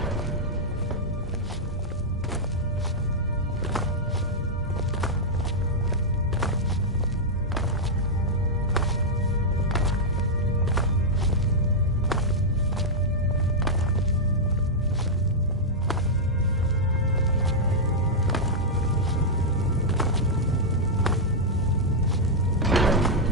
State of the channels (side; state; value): both; normal; correlation -0.05